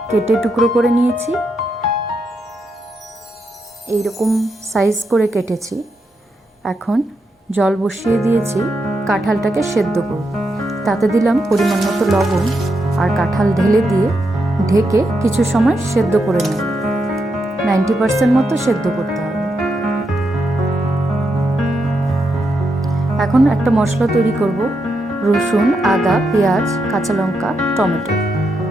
কেটে টুকরো করে নিয়েছি, এইরকম সাইজ করে কেটেছি। এখন জল বসিয়ে দিয়েছি, কাঁঠালটাকে সেদ্ধ করব। তাতে দিলাম পরিমাণ মতো লবণ আর কাঁঠাল ঢেলে দিয়ে ঢেকে কিছু সময় সেদ্ধ করে নেব। 90% মতো সেদ্ধ করতে হবে। এখন একটা মশলা তৈরি করব। রসুন, আদা, পেঁয়াজ, কাঁচা লঙ্কা, টমেটো,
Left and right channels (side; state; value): both; normal; correlation 0.83